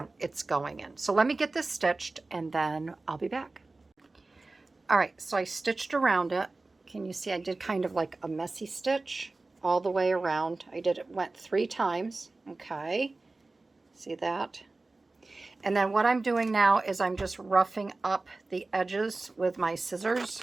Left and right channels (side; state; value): left; quieter; 3.3 dB